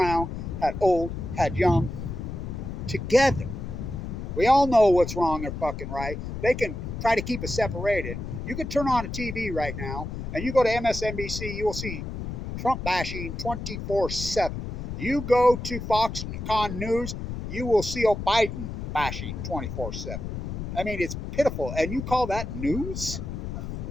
had old, had young, together. We all know what's wrong or fucking right. They can try to keep us separated. You can turn on a TV right now, and you go to MSNBC, you will see Trump bashing 24/7. You go to Foxconn News, you will see Biden bashing 24/7. I mean, it's pitiful. And you call that news?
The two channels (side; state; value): left; noise; rumble, 6 dB below the sound